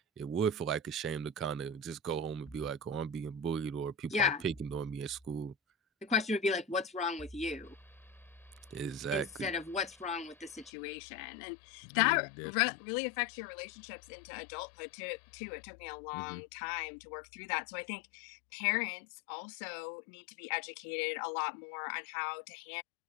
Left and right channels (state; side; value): drops out; right; at 10.7 s